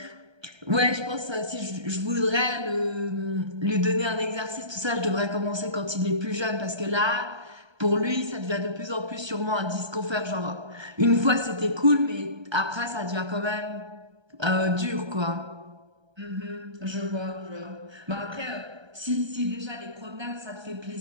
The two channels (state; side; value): late; left; 1.3 ms